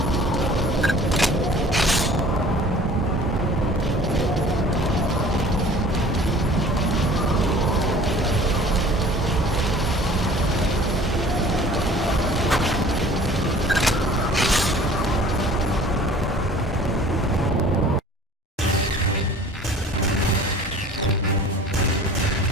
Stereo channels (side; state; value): both; normal; correlation 0.47